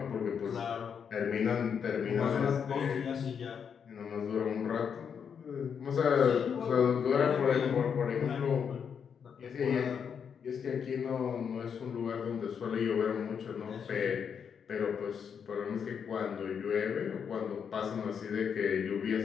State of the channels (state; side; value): quieter; right; 7.1 dB